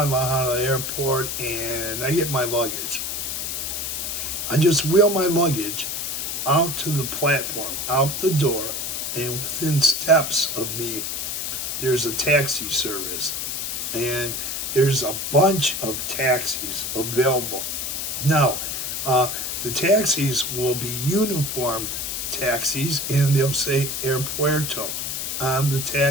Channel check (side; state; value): left; noise; hiss, 3 dB below the sound